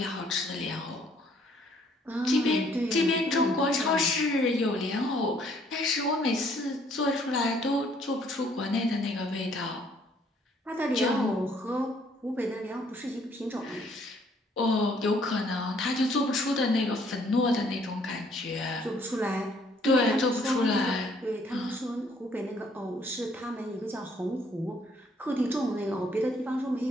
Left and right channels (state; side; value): normal; both; correlation 0.64